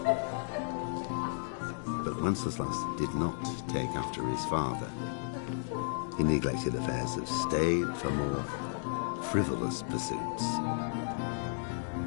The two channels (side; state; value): right; silent; digital silence